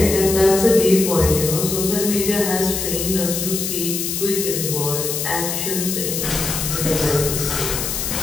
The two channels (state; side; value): noise; left; hiss, 3 dB below the sound